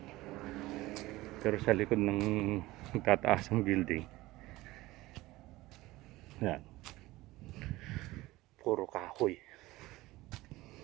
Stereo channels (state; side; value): quieter; left; 18.7 dB